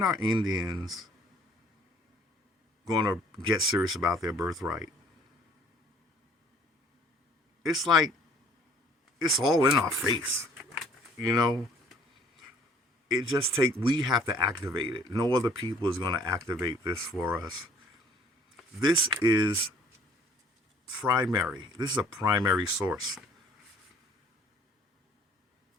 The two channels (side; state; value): both; normal; correlation 0.56